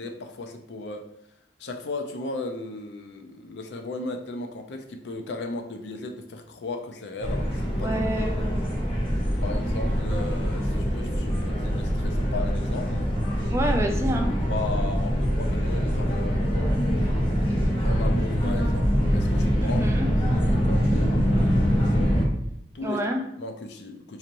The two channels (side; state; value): both; normal; correlation 0.87